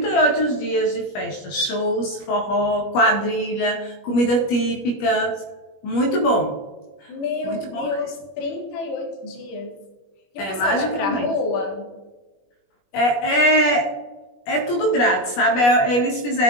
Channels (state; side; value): late; right; 21 ms